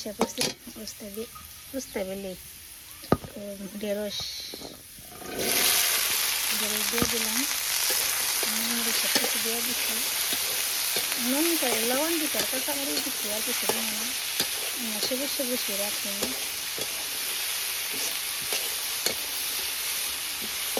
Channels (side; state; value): both; identical; correlation 1.00